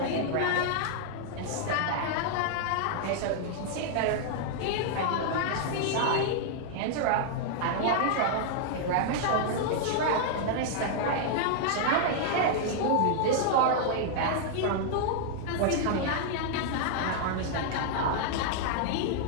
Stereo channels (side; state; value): both; different; correlation -0.01